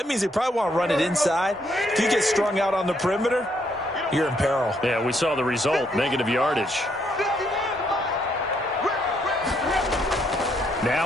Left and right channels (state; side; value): normal; both; correlation 0.73